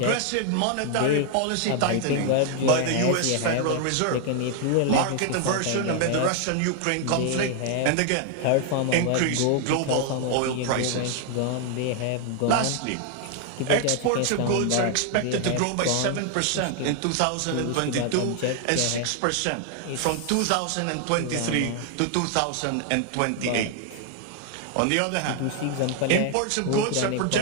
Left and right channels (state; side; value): different; both; correlation 0.00